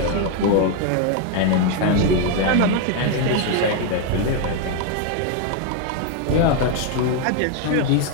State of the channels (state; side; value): different; both; correlation 0.01